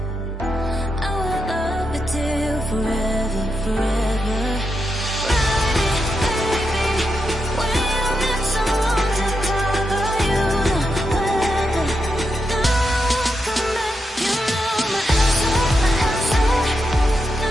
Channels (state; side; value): normal; both; correlation 0.85